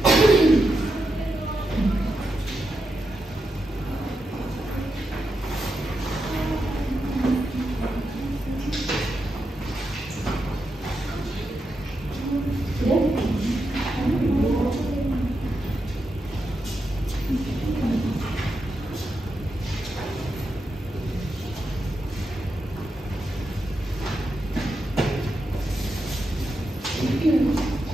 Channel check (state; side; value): normal; both; correlation 0.86